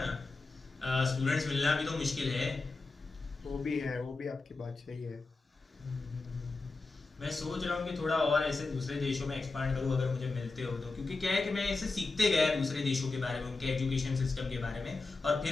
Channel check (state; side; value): quieter; right; 3.6 dB